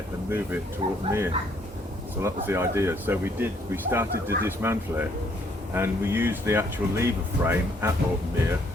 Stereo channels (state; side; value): normal; both; correlation 0.66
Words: and move it to Orton Mere. So that was the idea. So we started to dismantle it and we used the actual lever frame at Orton Mere,